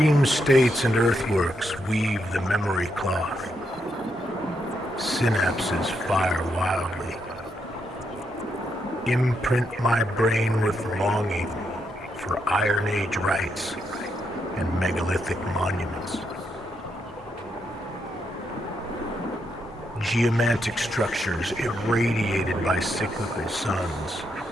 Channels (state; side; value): normal; both; correlation 0.80